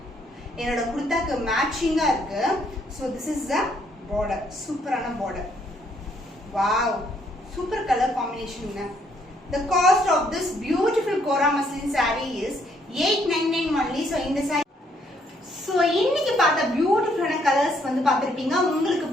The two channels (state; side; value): normal; both; correlation 0.69